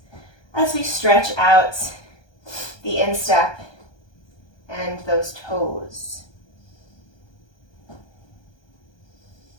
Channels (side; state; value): right; late; 1.2 ms